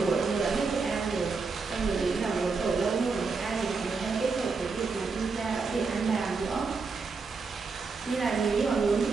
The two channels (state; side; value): quieter; left; 4.5 dB